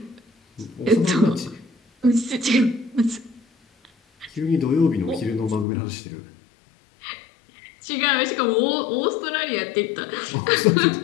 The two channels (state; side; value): drops out; right; at 5.7 s